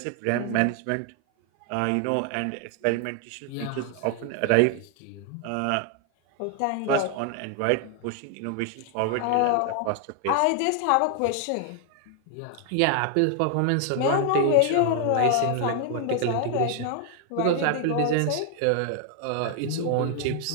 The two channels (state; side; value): different; both; correlation 0.00